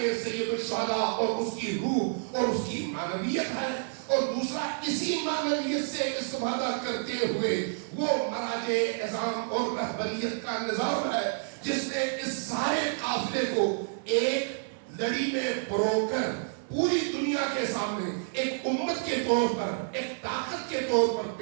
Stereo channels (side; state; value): left; silent; 57 dB below the other